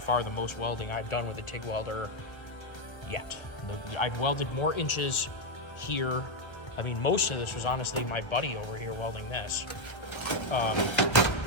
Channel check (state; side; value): late; right; 1.2 ms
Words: the most welding I've done with a TIG welder yet. I've welded more inches here. I mean, most of this was honestly my buddy over here welding this.